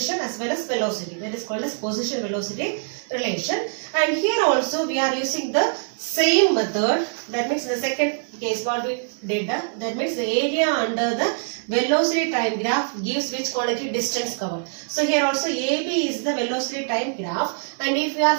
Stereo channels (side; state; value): left; silent; 63 dB below the other